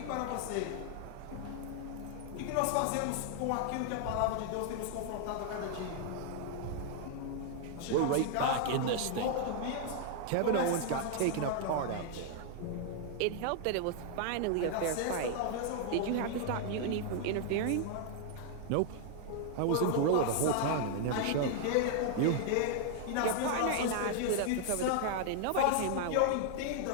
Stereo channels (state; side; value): different; both; correlation 0.00